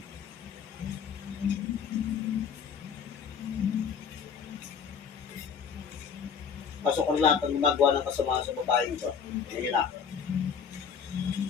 Pasok ko lahat ng gumagawa ng kasamaan sa babae ito. Yan na.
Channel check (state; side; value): quieter; right; 6.9 dB